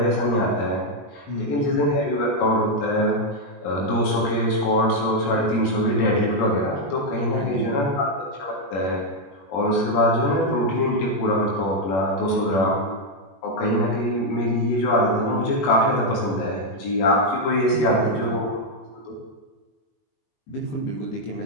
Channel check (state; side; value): late; right; 21 ms